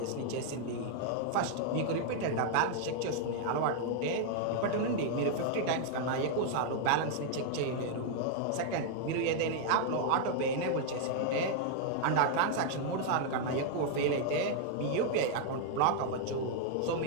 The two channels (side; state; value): both; different; correlation -0.01